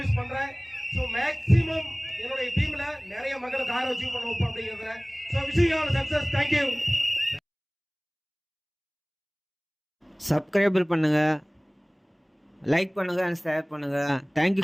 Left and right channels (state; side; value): identical; both; correlation 1.00